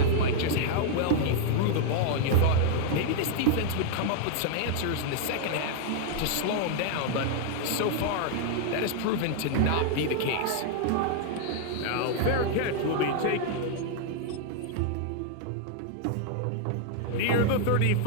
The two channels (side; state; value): both; different; correlation 0.00